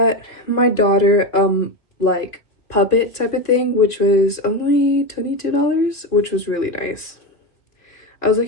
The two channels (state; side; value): late; right; 2.2 ms